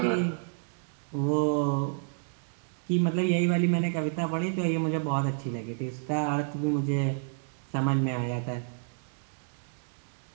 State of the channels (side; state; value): left; silent; digital silence